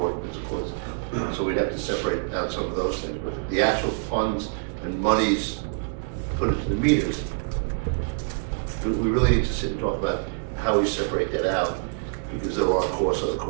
there's a cost. So we'd have to separate out some of those things, but the actual funds and monies put into the meters, we really need to sit and talk about how we separate that out, because there are costs, other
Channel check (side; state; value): left; silent; 61 dB below the other